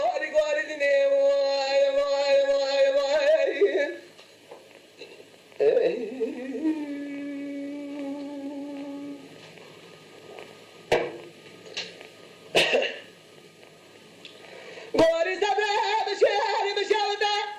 arigo aridine vay vay vay vay Gori sabah bişari bişavda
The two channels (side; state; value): both; identical; correlation 1.00